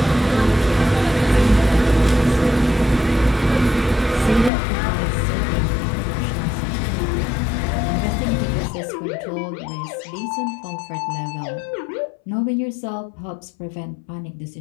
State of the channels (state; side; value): drops out; right; at 4.5 s